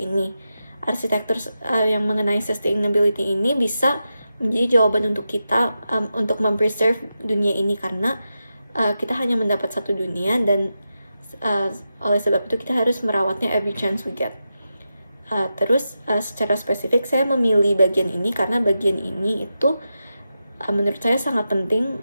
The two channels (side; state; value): both; inverted; correlation -0.90